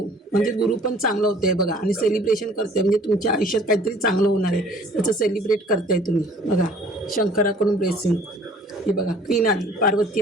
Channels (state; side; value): normal; both; correlation 0.53